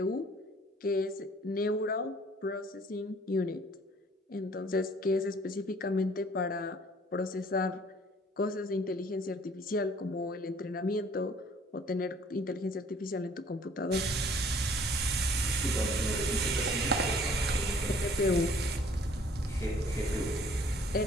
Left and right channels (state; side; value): normal; both; correlation 0.56